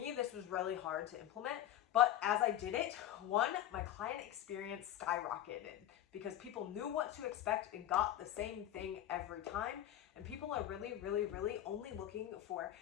this was really hard to implement. But as I did it, one, my client experience skyrocketed because people knew what to expect and got the same thing every time. And people are really, really, really only looking for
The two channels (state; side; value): quieter; right; 12.0 dB